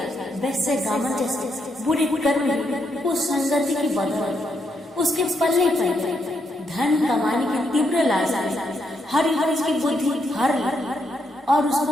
वैसे गामन जैसे बुरे कर्म उस संगति की बदौलत उसके पल्ले पड़ गए। धन कमाने की तीव्र लालसा हरिवंश की बुद्धि हर और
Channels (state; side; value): normal; both; correlation 0.78